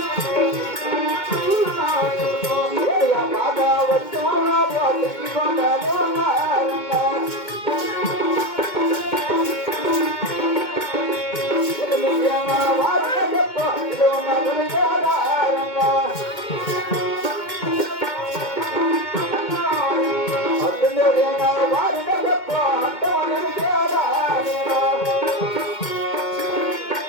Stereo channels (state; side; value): late; right; 2.2 ms